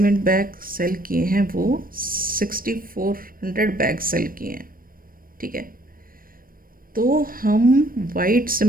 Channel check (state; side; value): late; left; 0.41 ms